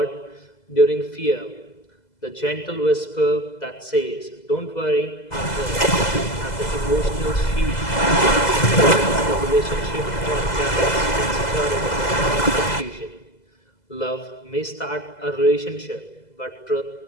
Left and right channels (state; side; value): late; right; 2.0 ms